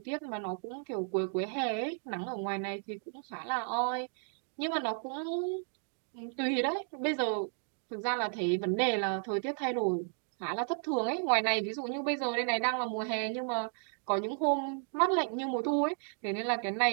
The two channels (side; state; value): left; silent; 55 dB below the other